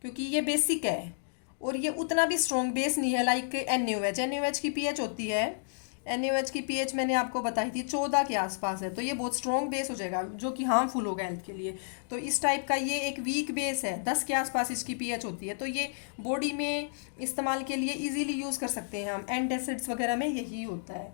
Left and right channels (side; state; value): right; silent; digital silence